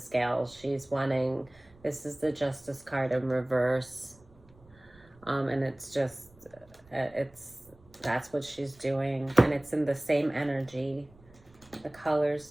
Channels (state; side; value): noise; right; rumble, 27 dB below the sound